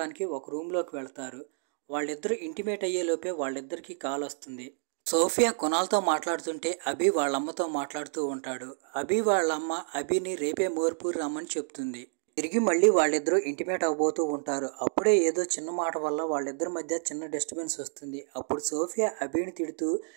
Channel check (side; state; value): left; silent; 58 dB below the other